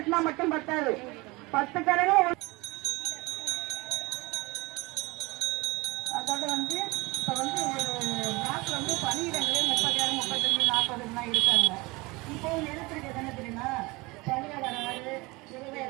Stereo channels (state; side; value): quieter; left; 23.9 dB